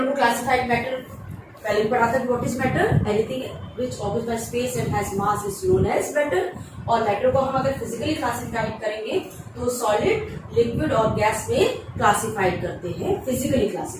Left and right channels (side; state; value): both; identical; correlation 1.00